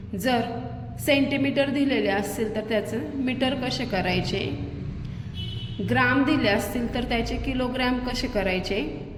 जर सेंटीमीटर दिलेले असतील तर त्याचं मीटर कसे करायचे, ग्राम दिले असतील तर त्याचे किलोग्राम कसे करायचे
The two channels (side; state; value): both; identical; correlation 1.00